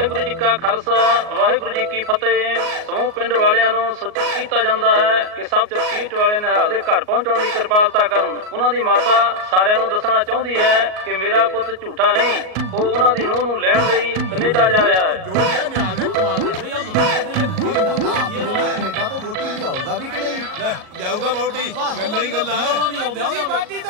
ਜੀ ਕਾ ਖਾਲਸਾ, ਵਾਹਿਗੁਰੂ ਜੀ ਕੀ ਫਤਿਹ। ਸਮੂਹ ਪਿੰਡ ਵਾਲਿਆਂ ਨੂੰ ਸੂਚਿਤ ਕੀਤਾ ਜਾਂਦਾ ਹੈ ਕਿ ਸਭ ਚਰਖੀਟ ਵਾਲੇ ਨਿਹਾਲ ਦੇ ਘਰ ਪਹੁੰਚਣ ਦੀ ਕਿਰਪਾਲਤਾ ਕਰਨ। ਉਹਨਾਂ ਦੀ ਮਾਤਾ ਸਾਰਿਆਂ ਨੂੰ ਦੱਸਣਾ ਚਾਹੁੰਦੀ ਹੈ ਕਿ ਮੇਰਾ ਪੁੱਤ ਝੂਠਾ ਨਹੀਂ, ਉਹ ਉਹਨਾਂ ਦੀ ਨੂੰਹ ਨੂੰ ਲੈਣ ਲਈ ਕੈਨੇਡਾ ਜਾ ਰਿਹਾ ਹੈ। ਕੈਨੇਡਾ ਤੋਂ ਵੋਟੀ ਲਿਆਊਗਾ ਵੀ ਕਿ ਨਹੀਂ? ਲਿਆਊਗਾ ਵੋਟੀ, ਗੱਲਾਂ ਹੀ ਗੱਲਾਂ। ਵੋਟੀ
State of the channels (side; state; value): left; late; 38 ms